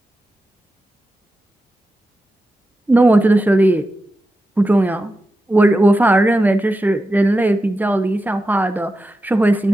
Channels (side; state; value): both; normal; correlation 0.91